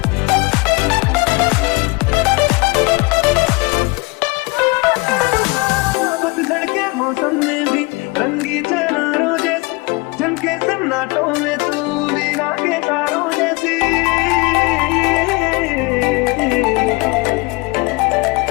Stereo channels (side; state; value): right; quieter; 25.8 dB